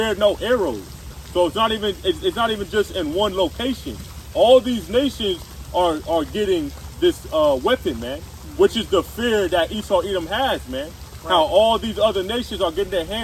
no arrows. So it's not even just in one location. All these nations are getting this weapon, man, which is the fear that Esau Edom has, man. Right. How all these other nations are getting their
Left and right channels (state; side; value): identical; both; correlation 1.00